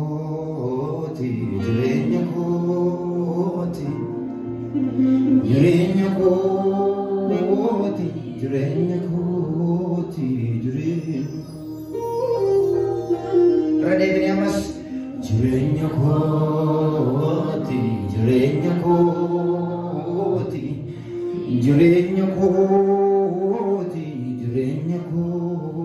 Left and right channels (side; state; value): both; identical; correlation 1.00